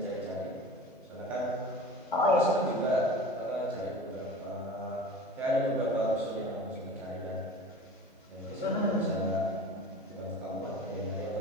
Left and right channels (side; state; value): both; normal; correlation 0.38